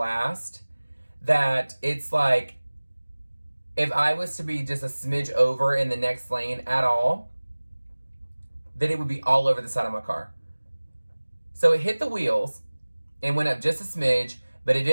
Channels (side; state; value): both; inverted; correlation -1.00